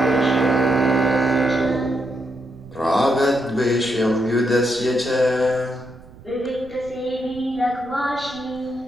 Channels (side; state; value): right; noise; rumble, 21 dB below the sound